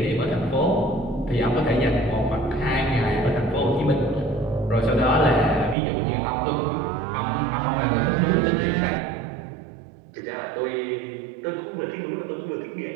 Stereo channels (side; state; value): left; drops out; at 5.8 s